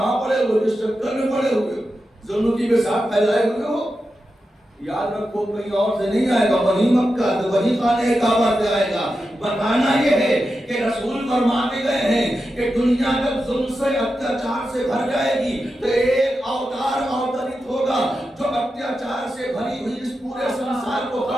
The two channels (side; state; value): both; normal; correlation 0.90